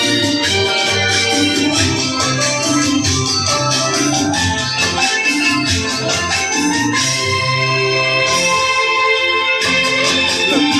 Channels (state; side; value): identical; both; correlation 1.00